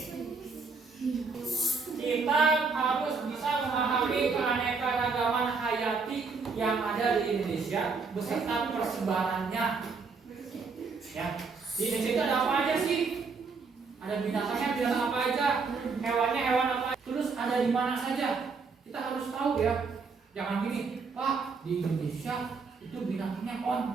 Kita harus bisa memahami keanekaragaman hayati yang ada di Indonesia beserta persebarannya. Ya, di Indonesia itu ada apa aja sih? Ada binatangnya binatang apa aja? Hewannya hewan apa? Terus ada di mana saja? Kita harus tahu ya. Jangan gini, Pak, di Indonesia itu binatangnya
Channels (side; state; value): left; quieter; 4.7 dB